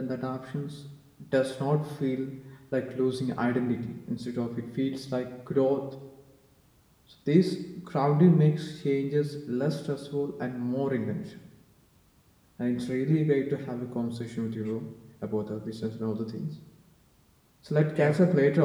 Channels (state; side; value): identical; both; correlation 1.00